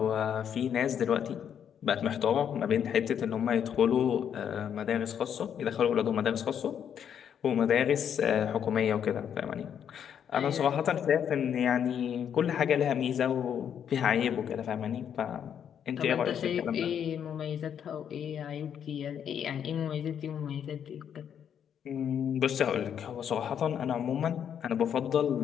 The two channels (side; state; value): right; quieter; 8.6 dB